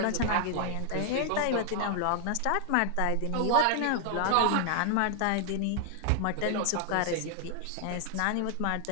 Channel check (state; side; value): different; both; correlation 0.00